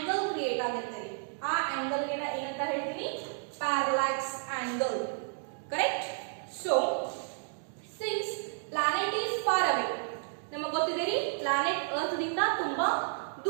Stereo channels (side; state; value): left; silent; digital silence